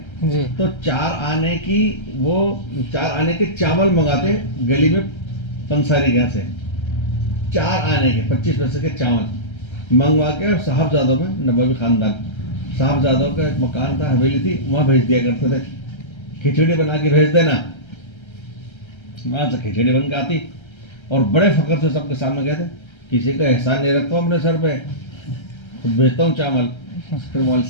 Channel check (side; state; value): right; late; 1.3 ms